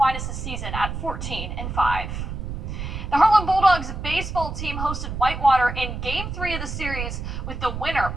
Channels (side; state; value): right; noise; rumble, 6 dB below the sound